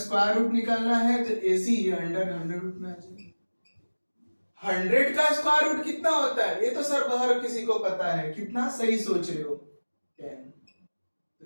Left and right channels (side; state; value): both; inverted; correlation -1.00